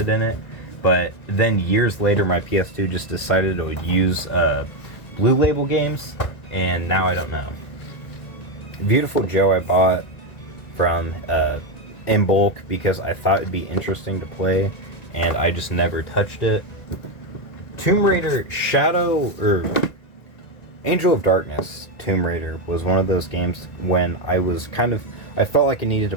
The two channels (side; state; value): right; late; 1.9 ms